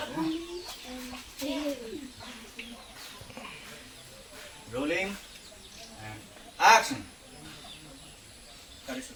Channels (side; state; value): both; identical; correlation 1.00